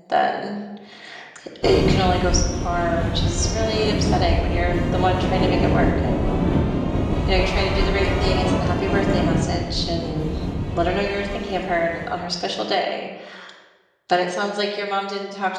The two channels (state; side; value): identical; both; correlation 1.00